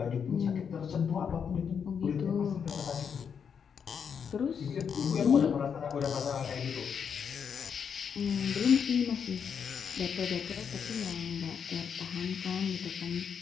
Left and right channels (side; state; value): right; quieter; 7.0 dB